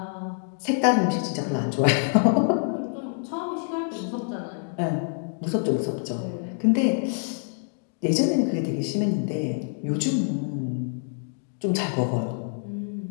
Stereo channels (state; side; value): silent; right; 61 dB below the other